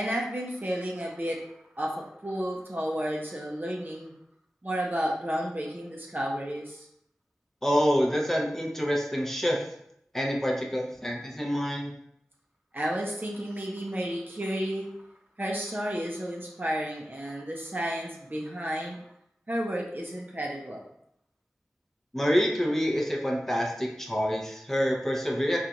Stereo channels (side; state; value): both; normal; correlation 0.93